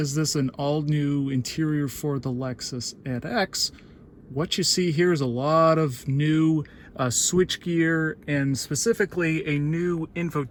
this an all-new interior for the Lexus NX, what you see here is a lot of new switchgear and specifically a new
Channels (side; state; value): both; identical; correlation 1.00